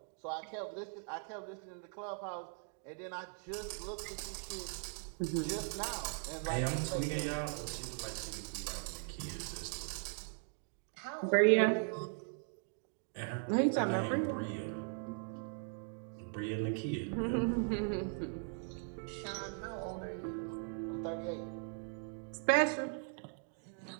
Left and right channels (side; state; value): left; silent; 52 dB below the other